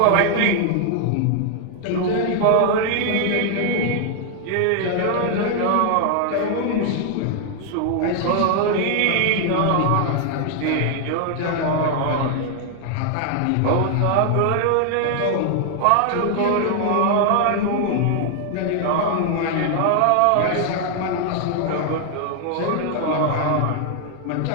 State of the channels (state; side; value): different; both; correlation 0.00